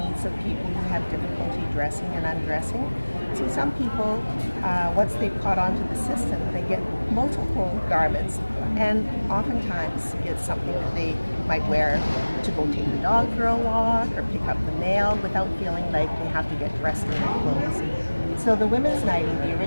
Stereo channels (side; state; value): both; inverted; correlation -1.00